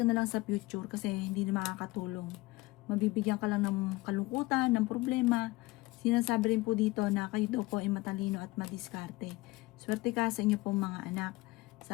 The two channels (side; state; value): right; quieter; 21.0 dB